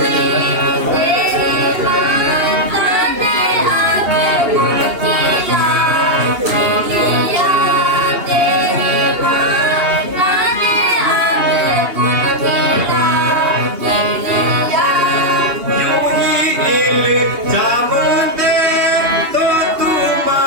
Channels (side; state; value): left; late; 2.8 ms